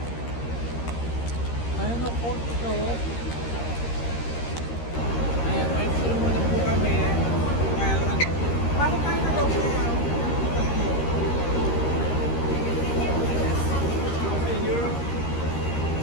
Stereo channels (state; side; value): late; right; 13 ms